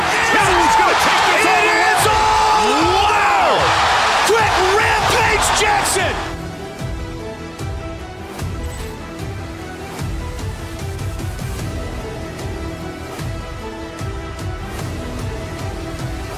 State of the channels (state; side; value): identical; both; correlation 1.00